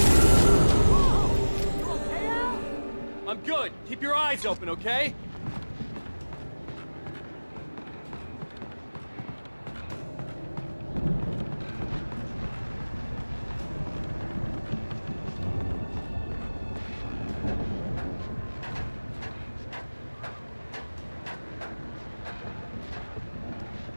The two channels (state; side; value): inverted; both; correlation -1.00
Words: I'm good. Keep your eyes open, okay?